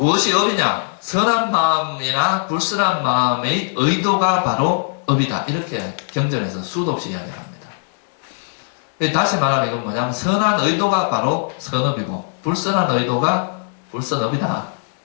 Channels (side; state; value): right; silent; 66 dB below the other